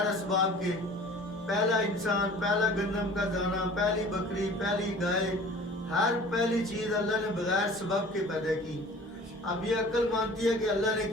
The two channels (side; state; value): both; normal; correlation 0.45